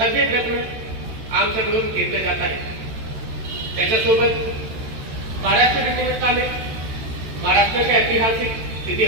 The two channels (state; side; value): late; left; 13 ms